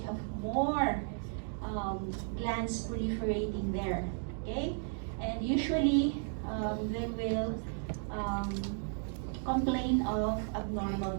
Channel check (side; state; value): left; silent; 55 dB below the other